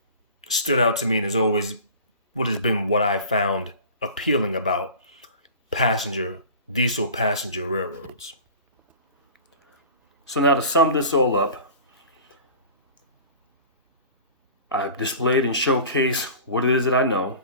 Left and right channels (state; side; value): inverted; both; correlation -0.40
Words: stood out to me and is always what I found appealing about diesel passenger railroads. So now to sum this all up, I've displayed and showcased what it is that I know.